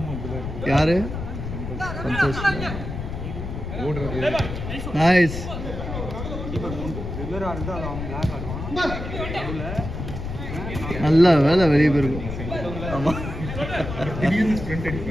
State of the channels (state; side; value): noise; left; rumble, 6 dB below the sound